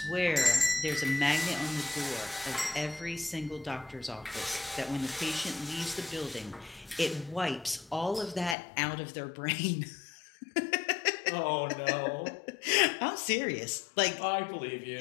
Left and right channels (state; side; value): drops out; right; at 8.6 s